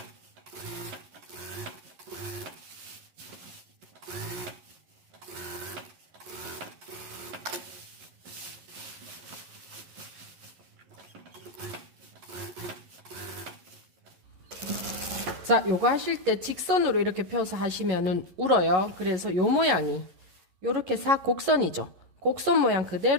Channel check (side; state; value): left; late; 11 ms